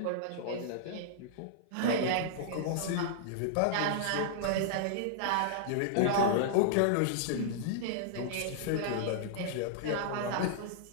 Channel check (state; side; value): different; both; correlation -0.01